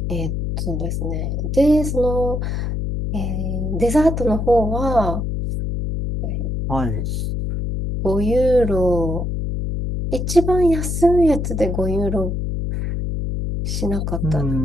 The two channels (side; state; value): left; noise; hum, 2 dB below the sound